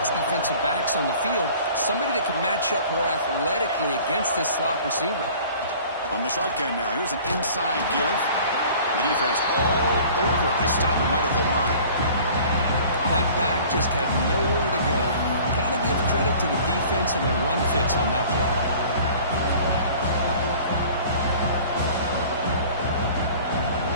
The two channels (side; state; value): both; inverted; correlation -0.47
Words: defensive backs on the field, somebody that can match up more athletically against this slot receiver. On the shotgun now, here's an inside give. The defense all over it. They stop him right at the line. That back just had nowhere to go. Got to give credit to the defense and the run fits on that play.